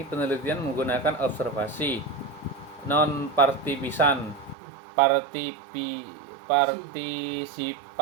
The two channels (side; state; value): left; drops out; at 4.5 s